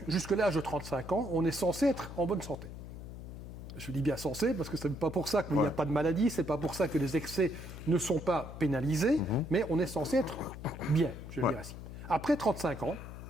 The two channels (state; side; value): noise; left; hum, 11 dB below the sound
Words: jusqu'à l'âge de 35 ans, on est censé être en bonne santé. Je dis bien censé, parce que ce n'est pas pour ça qu'il n'y a pas de maladie, ce n'est pas pour ça que les excès ne sont pas pénalisés, mais on est censé être bien, je le dirais ainsi. Après 35 ans,